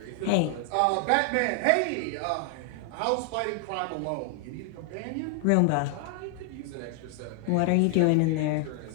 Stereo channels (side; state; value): both; different; correlation 0.00